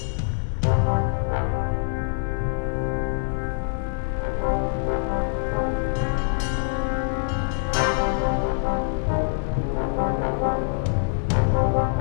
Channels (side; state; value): right; silent; 62 dB below the other